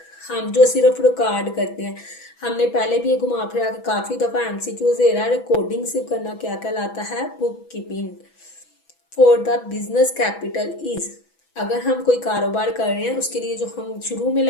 हम जो सिर्फ रिकॉर्ड करते हैं, हमने पहले भी ये घुमा फिरा के काफ़ी दफ़ा एमसीक्यूज दे रहा है, रिकॉर्डिंग सिर्फ करना क्या कहलाता है, book keeping. For the business capital is, अगर हम कोई कारोबार कर रहे हैं उसके लिए जो हम शुरू में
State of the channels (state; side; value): late; right; 6.1 ms